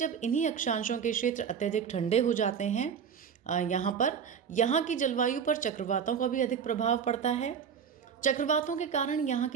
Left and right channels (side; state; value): left; quieter; 7.2 dB